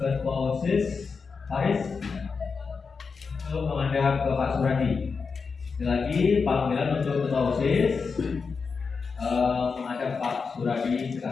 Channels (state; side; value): quieter; right; 5.1 dB